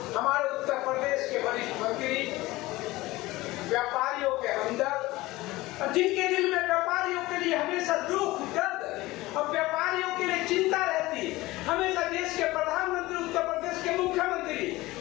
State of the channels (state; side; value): quieter; right; 19.2 dB